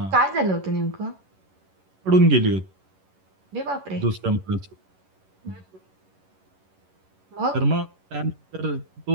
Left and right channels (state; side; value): late; left; 11 ms